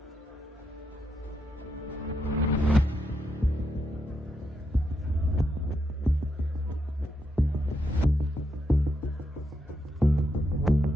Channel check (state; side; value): normal; both; correlation 0.82